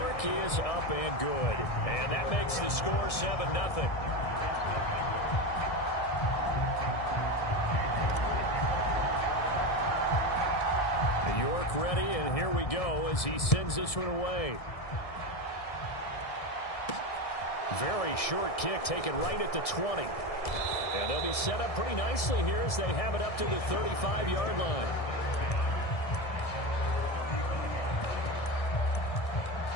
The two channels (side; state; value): right; late; 1.6 ms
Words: is up and good. And that makes the score 7-0. York ready, and here we go as he sends this one away. Very short kick taken right at the 20. And they'll be set up pretty nicely here as they have it up to the 35-yard line.